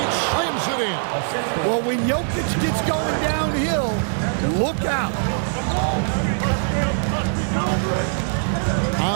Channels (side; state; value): left; silent; digital silence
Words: slams it in. Well, when Jokic gets going downhill, look out.